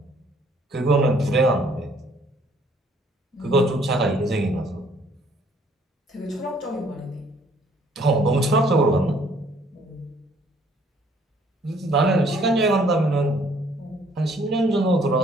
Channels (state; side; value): normal; both; correlation 0.62